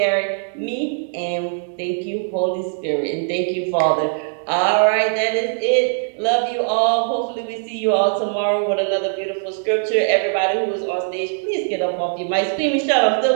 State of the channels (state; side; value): silent; left; 65 dB below the other